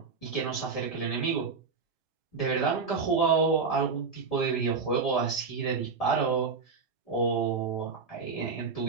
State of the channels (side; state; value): left; quieter; 4.9 dB